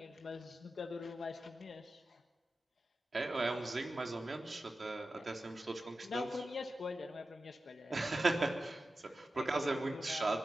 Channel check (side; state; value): both; normal; correlation 0.93